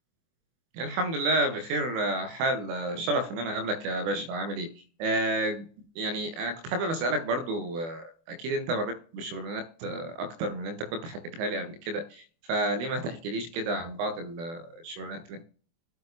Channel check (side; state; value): left; late; 24 ms